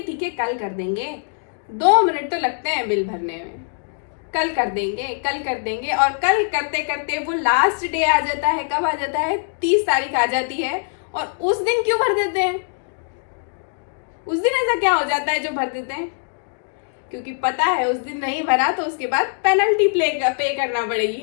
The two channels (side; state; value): right; silent; digital silence